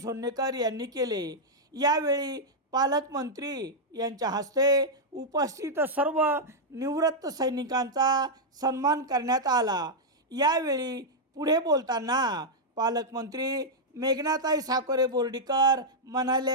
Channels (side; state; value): both; normal; correlation -0.05